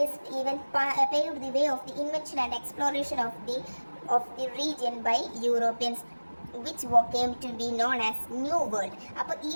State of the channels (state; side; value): inverted; both; correlation -1.00